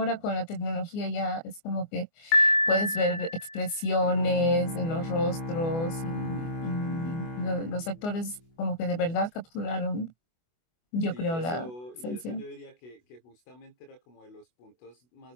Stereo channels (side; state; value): right; late; 24 ms